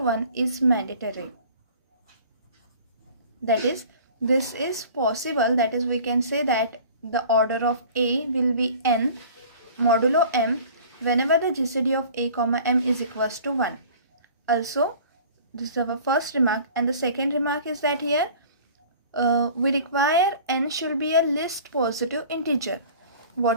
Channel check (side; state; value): both; inverted; correlation -0.45